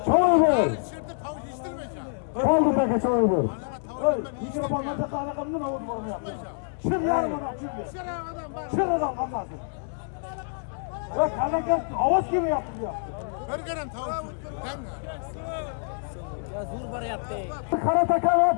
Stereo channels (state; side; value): silent; right; 60 dB below the other